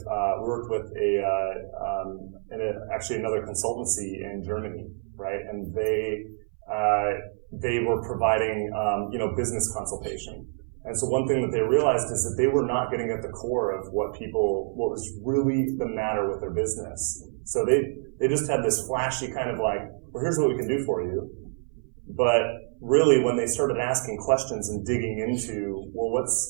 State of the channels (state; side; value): silent; left; 60 dB below the other